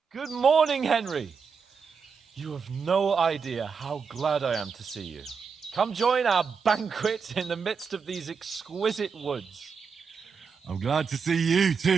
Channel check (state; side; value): quieter; left; 5.8 dB